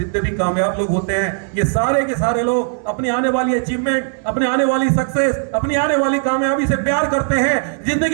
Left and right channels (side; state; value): left; silent; digital silence